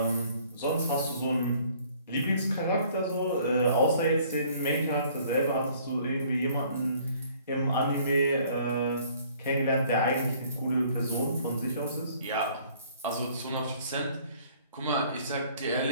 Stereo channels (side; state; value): both; inverted; correlation -0.58